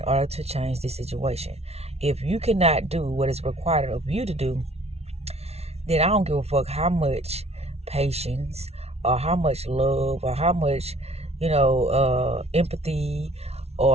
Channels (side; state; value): left; late; 0.31 ms